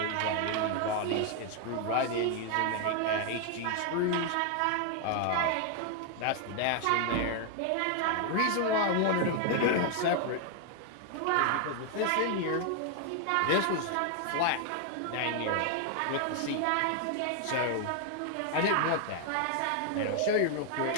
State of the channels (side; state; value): both; different; correlation 0.00